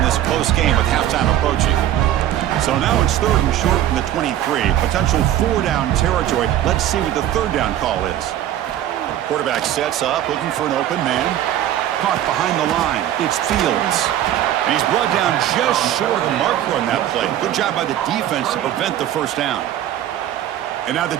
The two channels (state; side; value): quieter; left; 12.1 dB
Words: close game with halftime approaching. So now it's 3rd and short from the 23. Potential 4-down territory. Let's see what the 3rd down call is. Quarterback sets up, looking for an open man. Caught behind the line. It's Fields. And he's brought down just short of the marker on that play. Good job by the defense to prevent the 1st down. And now the